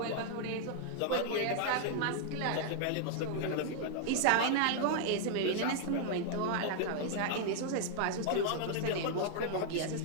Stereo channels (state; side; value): different; both; correlation -0.01